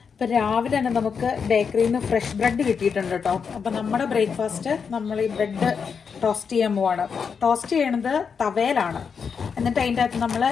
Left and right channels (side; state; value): right; quieter; 6.2 dB